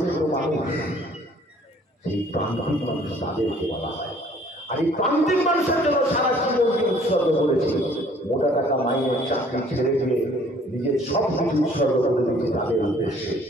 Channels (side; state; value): both; normal; correlation 0.57